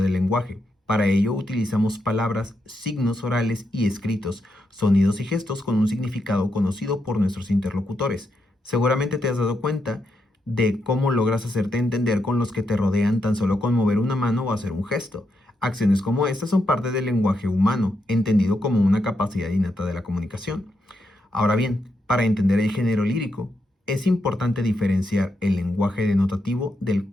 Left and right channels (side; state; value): both; normal; correlation 0.82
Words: lenguaje. Para ello utilizamos palabras, signos orales y escritos, sonidos y gestos con un significado conocido por nuestros interlocutores. Seguramente te has dado cuenta de cómo logras hacerte entender con los que te rodean tan solo con mover una mano o hacer un gesto. Acciones como estas son parte del lenguaje humano, entendido como una capacidad innata de la comunicación. Ahora bien, para entender el género lírico, es importante diferenciar el lenguaje denotativo del